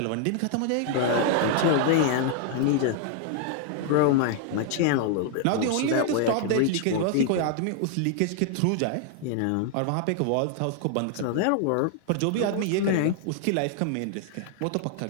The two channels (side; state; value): both; different; correlation 0.00